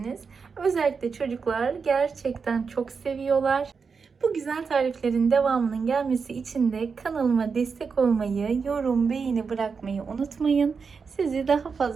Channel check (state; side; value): quieter; left; 5.4 dB